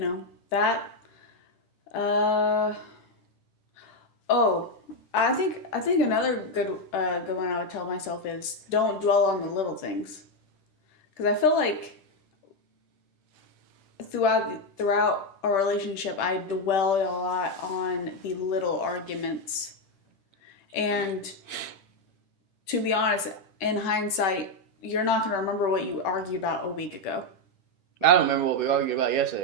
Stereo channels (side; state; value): right; late; 10 ms